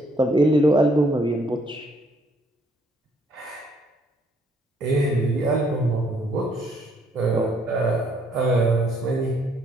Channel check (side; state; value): both; normal; correlation 0.67